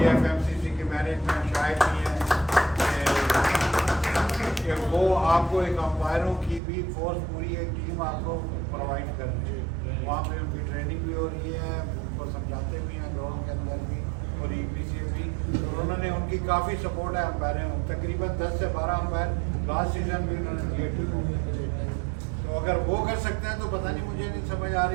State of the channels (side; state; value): left; drops out; at 6.6 s